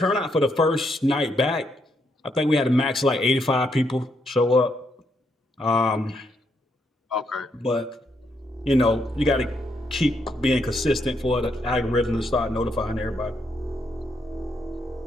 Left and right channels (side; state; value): both; normal; correlation 0.77